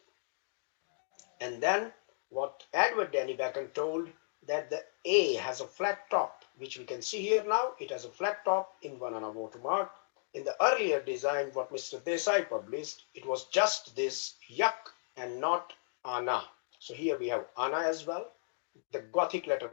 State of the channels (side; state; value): right; silent; digital silence